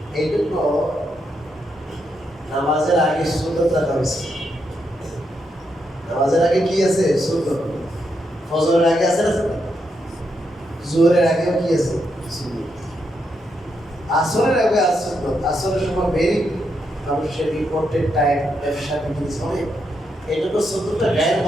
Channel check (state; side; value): normal; both; correlation 0.81